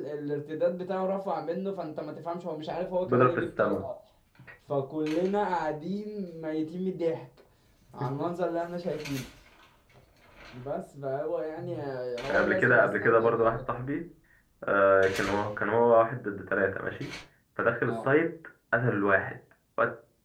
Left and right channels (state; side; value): identical; both; correlation 1.00